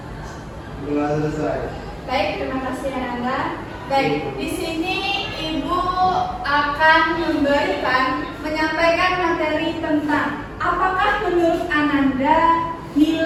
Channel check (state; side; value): identical; both; correlation 1.00